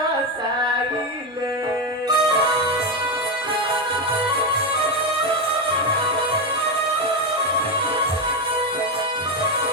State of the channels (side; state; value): both; normal; correlation 0.11